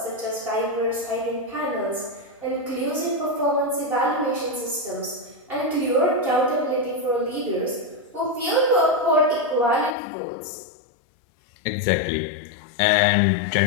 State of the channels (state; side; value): drops out; right; at 10.0 s